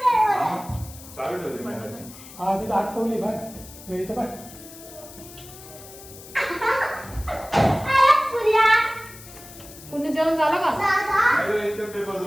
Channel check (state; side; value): noise; left; hiss, 17 dB below the sound